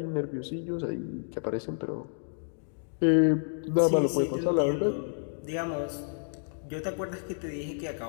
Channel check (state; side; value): silent; right; digital silence